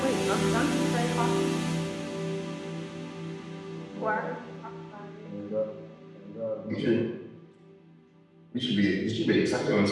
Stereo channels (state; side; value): identical; both; correlation 1.00